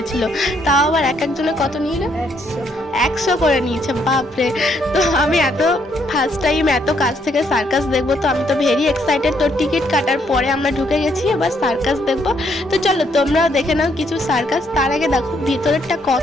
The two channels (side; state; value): both; normal; correlation 0.72